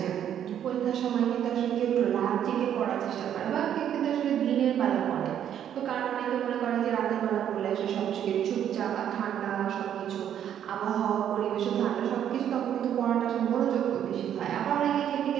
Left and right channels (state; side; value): quieter; left; 9.9 dB